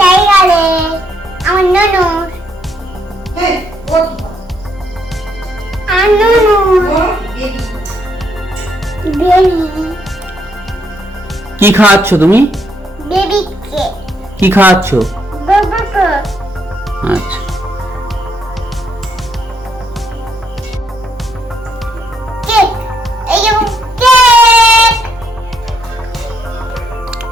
আমার ননু হ্যাঁ, ও আর ননু বেবি কি খাওয়াচ্ছ তুমি? বেবিকে কি খাওয়াচ্ছ? বাবাকে আচ্ছা কেক। এই যে কেক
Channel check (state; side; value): normal; both; correlation 0.74